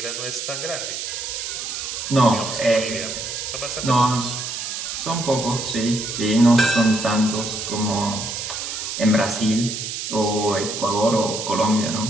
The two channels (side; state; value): right; noise; hiss, 5 dB below the sound